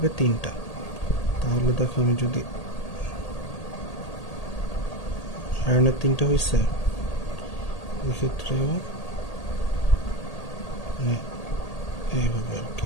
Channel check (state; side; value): late; right; 1.8 ms